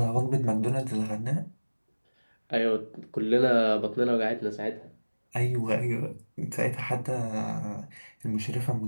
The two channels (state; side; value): inverted; both; correlation -1.00